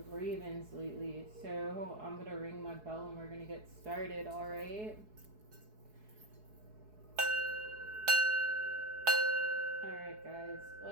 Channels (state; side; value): late; left; 4.7 ms